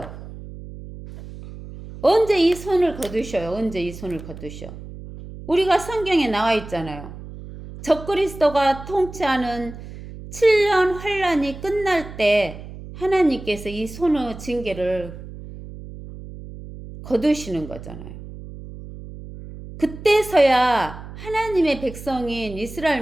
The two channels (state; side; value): noise; right; hum, 13 dB below the sound